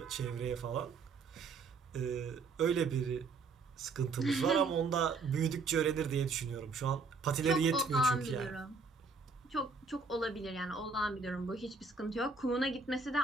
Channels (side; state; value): left; quieter; 4.4 dB